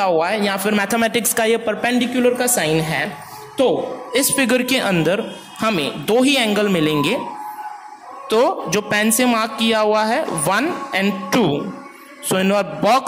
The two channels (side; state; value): both; identical; correlation 1.00